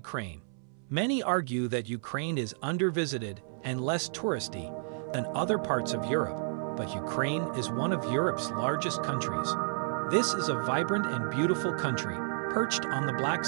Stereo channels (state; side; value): silent; left; 57 dB below the other